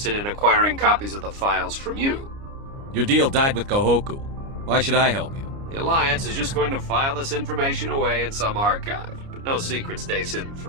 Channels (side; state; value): left; late; 29 ms